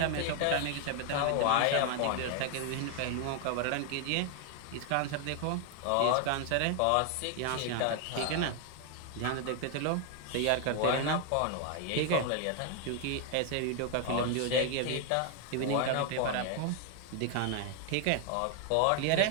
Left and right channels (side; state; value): both; different; correlation 0.00